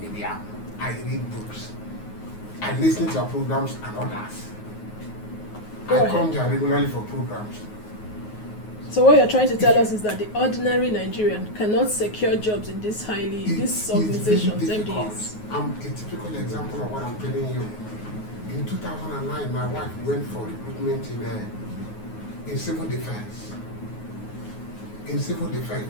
I read books, I listen to our programs and others. I come there regularly for programs. So what you're trying to tell us is that the ordinary Nigerian cannot secure jobs in these these organizations, MDAs. I'm a typical example of what I'm telling you. In 2009, my wife went for recruitment in civil defense. In civil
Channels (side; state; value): right; late; 9.4 ms